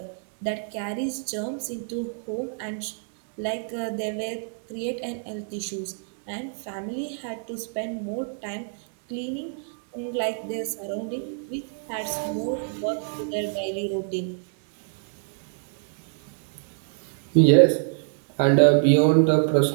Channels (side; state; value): left; silent; 60 dB below the other